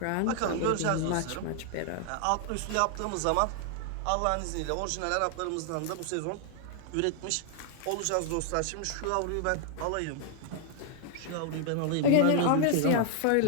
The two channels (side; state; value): both; different; correlation 0.00